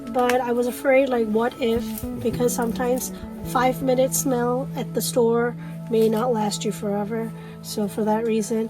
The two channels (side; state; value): both; identical; correlation 1.00